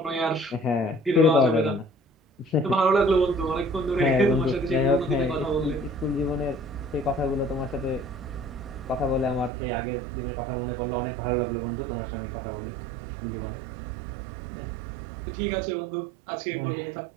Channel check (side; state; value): left; drops out; at 9.5 s